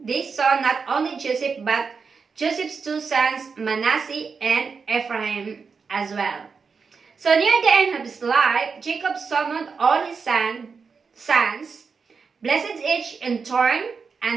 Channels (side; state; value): left; quieter; 5.3 dB